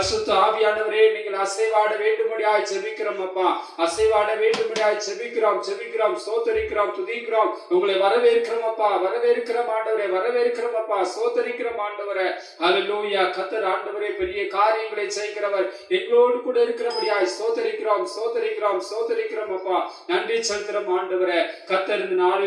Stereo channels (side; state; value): both; identical; correlation 1.00